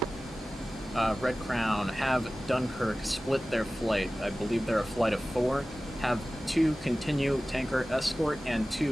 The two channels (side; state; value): both; normal; correlation 0.96